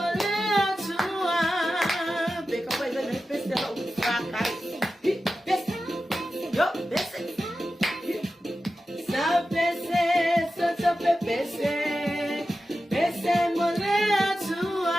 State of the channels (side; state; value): both; normal; correlation 0.93